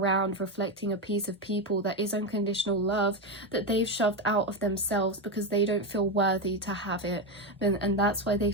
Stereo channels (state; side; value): normal; both; correlation 0.12